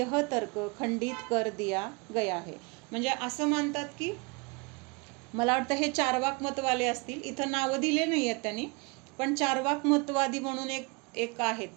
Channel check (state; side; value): quieter; left; 29.2 dB